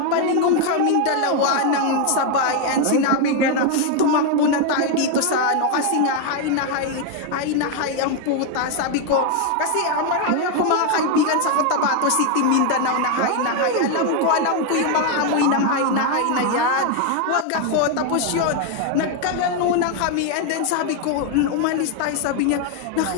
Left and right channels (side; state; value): both; different; correlation 0.01